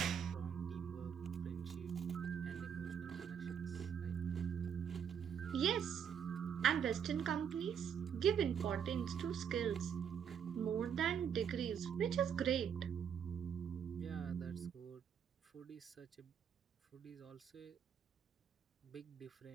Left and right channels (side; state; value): left; quieter; 7.9 dB